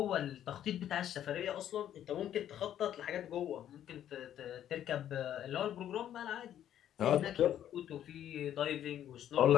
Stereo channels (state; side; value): quieter; right; 10.8 dB